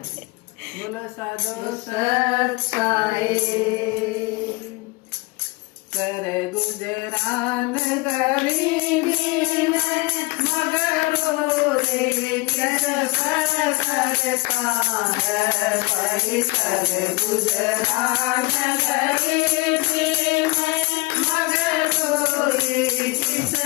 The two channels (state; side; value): quieter; right; 24.4 dB